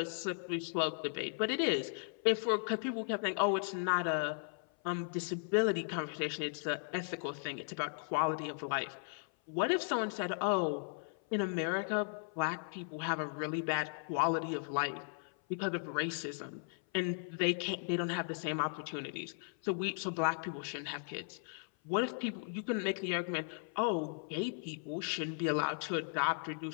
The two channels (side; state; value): right; silent; 53 dB below the other